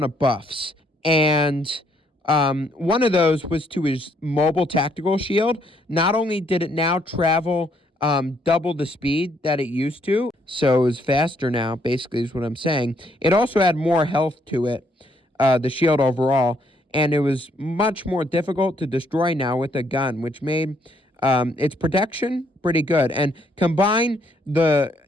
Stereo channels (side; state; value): both; normal; correlation 0.70